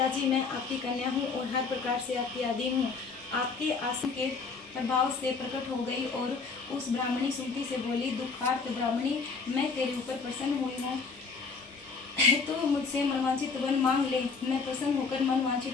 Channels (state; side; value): quieter; right; 4.8 dB